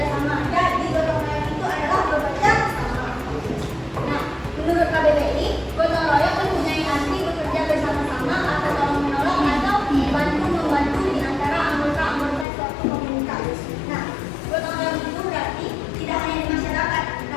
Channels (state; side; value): drops out; right; at 12.5 s